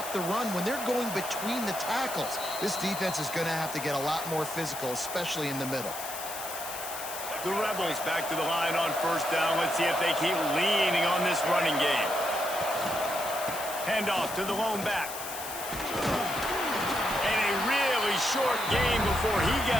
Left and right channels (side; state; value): left; noise; hiss, 8 dB below the sound